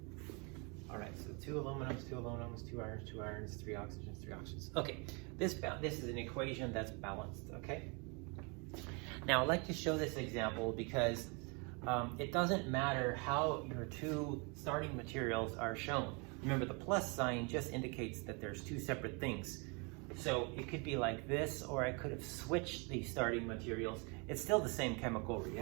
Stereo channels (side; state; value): left; quieter; 32.2 dB